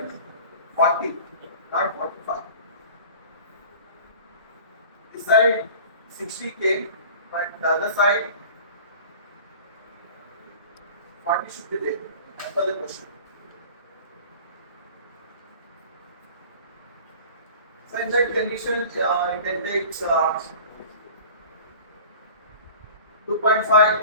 40, not 45. This side 60 came, but the other side 40 should be there as per the question. So in that condition, you can take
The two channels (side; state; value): both; inverted; correlation -0.42